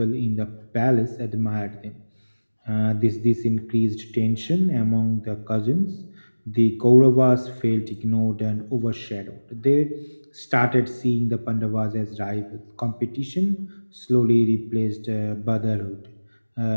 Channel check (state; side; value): inverted; both; correlation -1.00